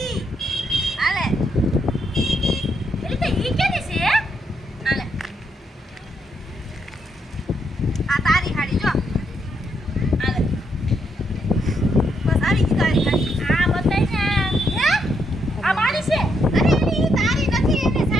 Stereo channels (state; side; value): normal; both; correlation 0.77